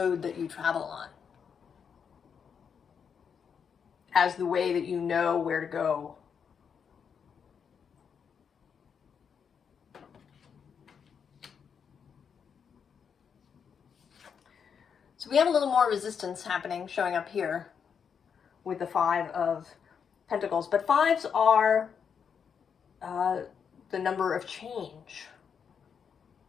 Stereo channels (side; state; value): right; quieter; 6.9 dB